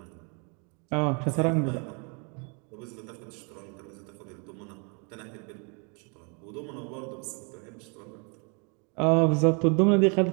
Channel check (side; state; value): left; quieter; 35.9 dB